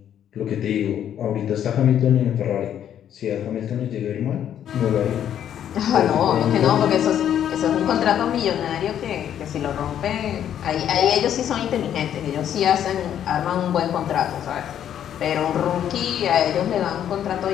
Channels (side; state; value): right; quieter; 10.0 dB